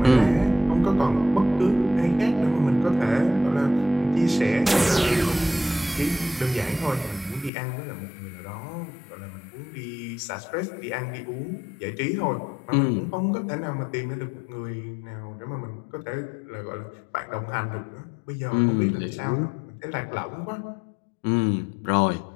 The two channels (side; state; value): right; drops out; at 7.5 s